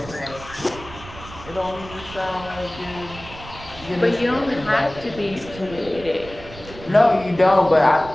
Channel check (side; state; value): right; noise; rumble, 16 dB below the sound